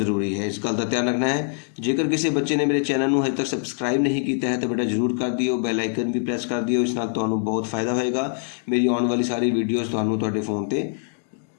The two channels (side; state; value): right; silent; digital silence